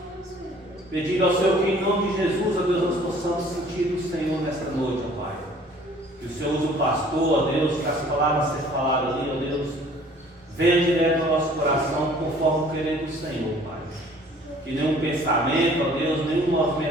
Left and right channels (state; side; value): normal; both; correlation 0.53